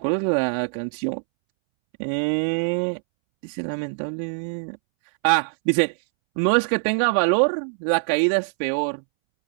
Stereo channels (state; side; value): silent; left; 63 dB below the other